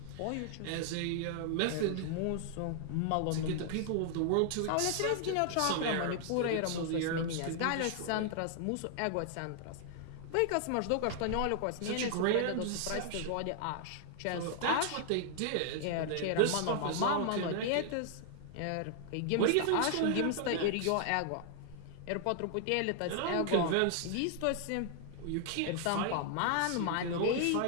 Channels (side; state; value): both; different; correlation 0.00